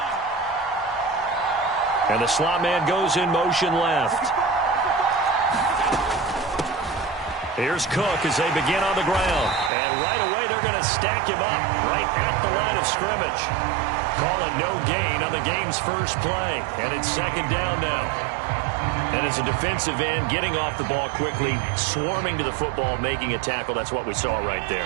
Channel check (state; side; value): drops out; left; at 9.7 s